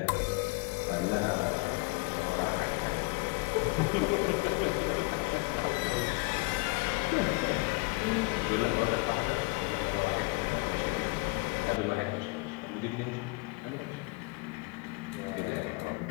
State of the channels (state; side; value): quieter; right; 26.5 dB